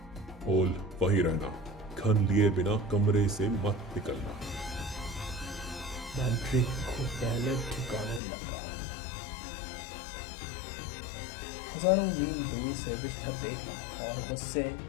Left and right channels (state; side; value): drops out; right; at 8.2 s